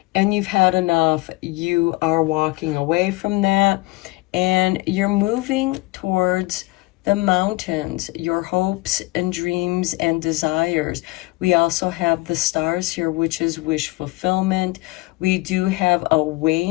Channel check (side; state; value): right; quieter; 22.0 dB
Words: and you've had enough. You are walking away from that, and you're moving towards the mountains, your hopes and dreams and desires. We also have the stars here, which is wish fulfillment. We do have a